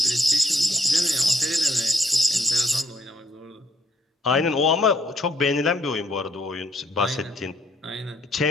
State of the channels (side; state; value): both; normal; correlation 0.71